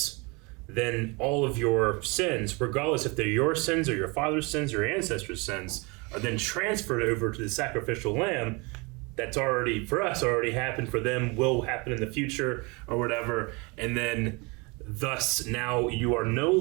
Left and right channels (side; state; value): left; quieter; 28.2 dB